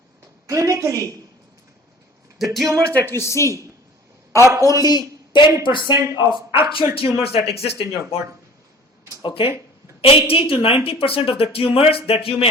Clinically, the tumors that you see are only 10% of actual tumors that exist in your body. Okay? 80 to 90% of the tumors that you may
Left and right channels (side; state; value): both; normal; correlation 0.46